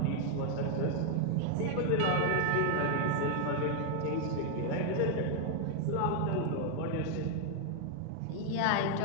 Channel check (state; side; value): different; both; correlation 0.00